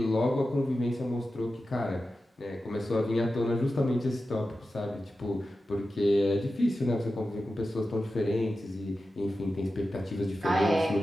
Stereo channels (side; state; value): both; normal; correlation 0.92